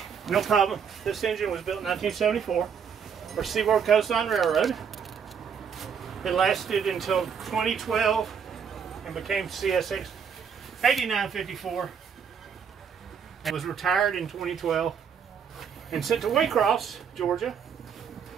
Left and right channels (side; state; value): left; quieter; 7.0 dB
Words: No problem. This engine was built in 1974 for Seaboard Coastline Railroad. It lasted until 2012 and became CSX 8954. It was retired in 2012 and sent to Waycross, Georgia,